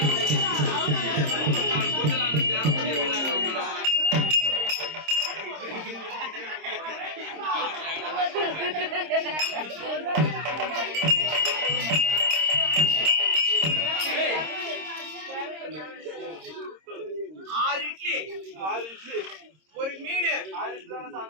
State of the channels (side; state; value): left; late; 26 ms